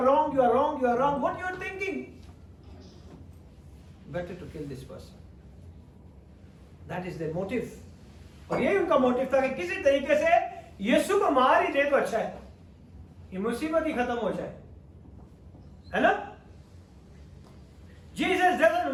wrong, you are wrong, you are wrong, what you are thinking? Better to kill this person. That is their motive. और यही उनका मोटिव था कि किसी तरीके से यीशु को मार ही दे तो अच्छा है, ये मुसीबत ही खत्म हो जाए, है ना? Jesus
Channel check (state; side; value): identical; both; correlation 1.00